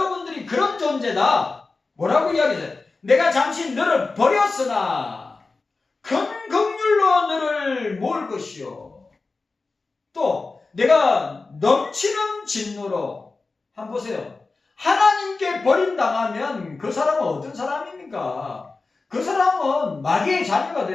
그런 존재다. 뭐라고 이야기해요? 내가 잠시 너를 버렸으나 큰 긍휼로 너를 모을 것이요. 또 내가 넘치는 진노로 한번 보세요. 하나님께 버림당하면 그 사람은 어떤 사람입니까? 그 사람은 마귀의 자녀가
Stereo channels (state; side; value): quieter; right; 3.8 dB